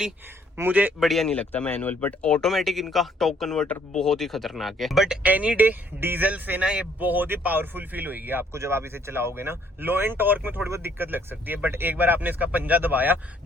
मुझे बढ़िया नहीं लगता मैनुअल, बट ऑटोमेटिक इनका टॉर्क कन्वर्टर बहुत ही खतरनाक है। बट एनी डे डीजल से ना ये बहुत ही पावरफुल फील होगी आपको जब आप इसे चलाओगे ना। लो एंड टॉर्क में थोड़ी बहुत दिक्कत लग सकती है, बट एक बार आपने इसका पंजा दबाया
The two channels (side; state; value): both; normal; correlation 0.65